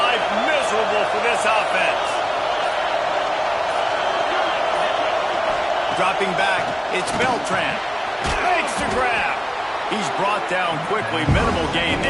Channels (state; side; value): identical; both; correlation 1.00